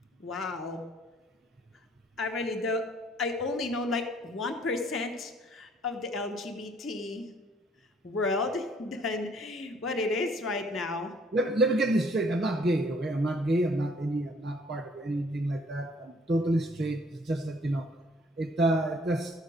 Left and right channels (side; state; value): both; normal; correlation 0.60